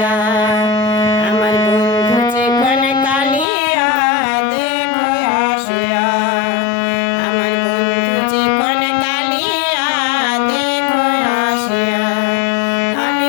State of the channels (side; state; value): right; drops out; at 3.5 s